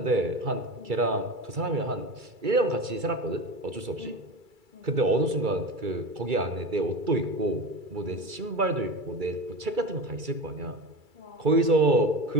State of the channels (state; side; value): late; left; 2.3 ms